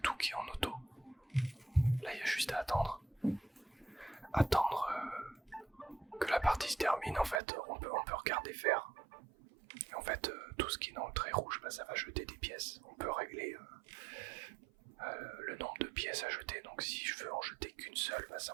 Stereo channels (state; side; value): drops out; left; at 7.4 s